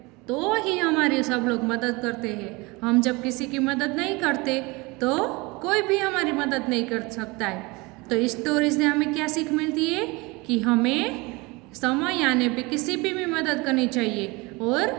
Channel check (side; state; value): left; quieter; 24.9 dB